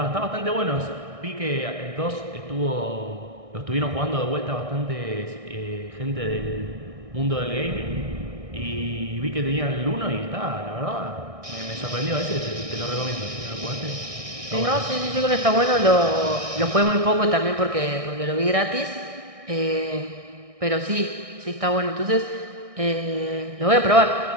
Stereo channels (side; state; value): left; late; 1.6 ms